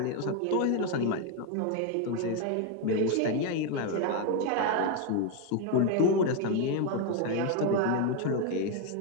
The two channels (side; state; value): both; different; correlation 0.01